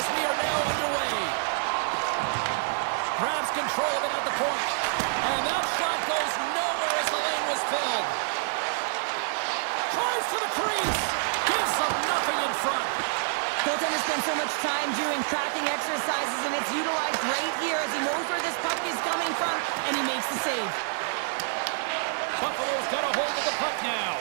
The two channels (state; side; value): silent; left; digital silence